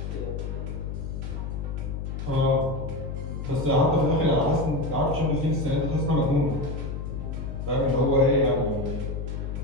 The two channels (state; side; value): noise; left; hum, 5 dB below the sound